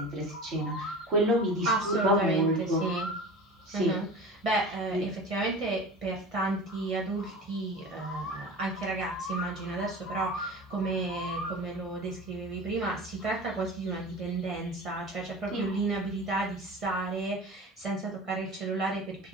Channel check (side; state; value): both; normal; correlation 0.35